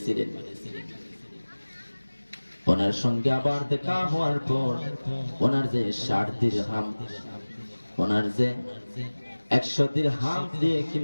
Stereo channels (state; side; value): inverted; both; correlation -1.00